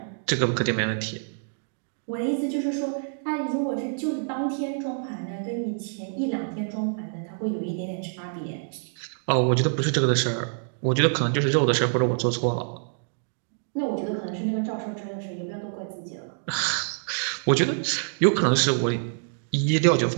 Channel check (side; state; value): left; silent; digital silence